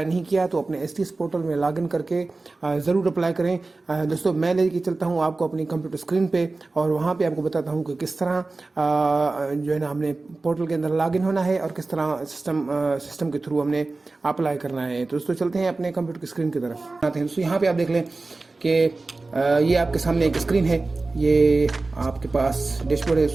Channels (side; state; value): left; quieter; 3.4 dB